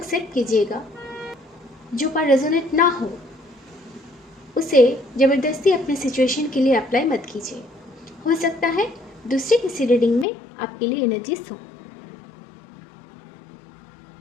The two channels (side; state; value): right; drops out; at 10.2 s